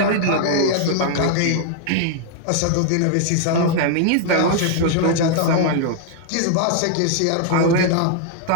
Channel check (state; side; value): different; both; correlation 0.00